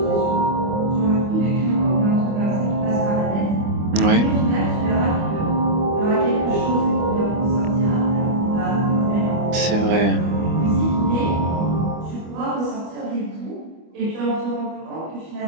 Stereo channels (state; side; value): late; left; 25 ms